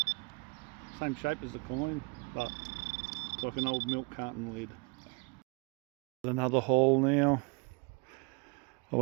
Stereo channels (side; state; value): left; quieter; 30.6 dB